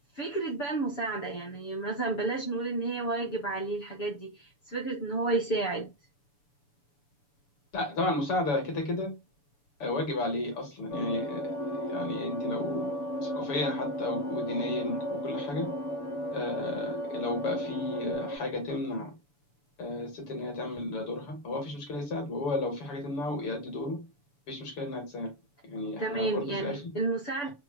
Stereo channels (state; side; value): late; right; 7.0 ms